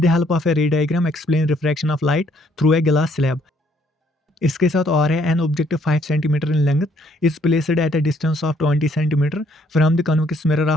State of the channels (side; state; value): both; normal; correlation 0.66